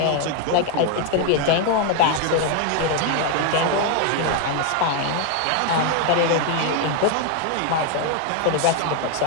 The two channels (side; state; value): both; different; correlation 0.01